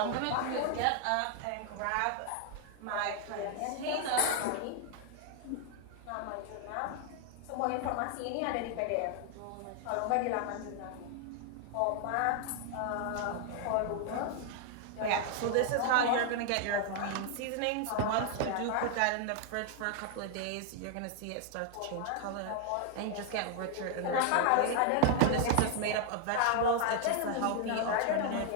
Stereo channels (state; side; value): different; both; correlation 0.00